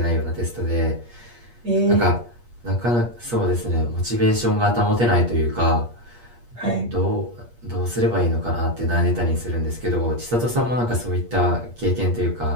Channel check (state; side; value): late; left; 8.4 ms